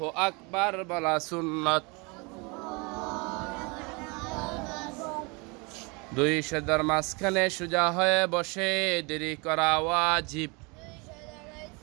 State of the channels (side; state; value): left; quieter; 29.2 dB